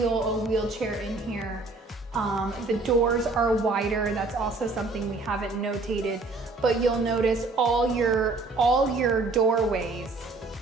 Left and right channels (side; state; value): left; quieter; 3.5 dB